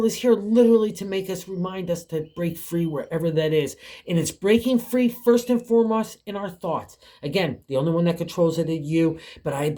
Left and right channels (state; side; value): identical; both; correlation 1.00